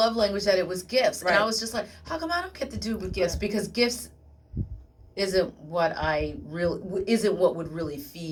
language, that it was gifts. Right. And I was just like, how come I don't get to do with gifts? Right. Because gifts isn't what would really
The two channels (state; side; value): identical; both; correlation 1.00